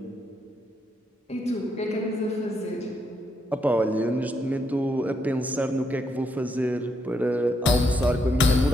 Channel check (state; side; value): normal; both; correlation 0.77